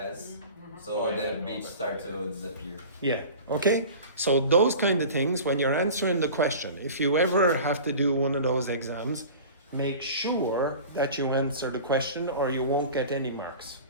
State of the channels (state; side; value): inverted; both; correlation -0.38